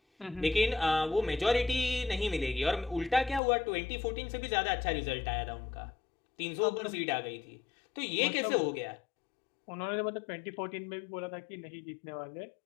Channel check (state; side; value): drops out; right; at 3.4 s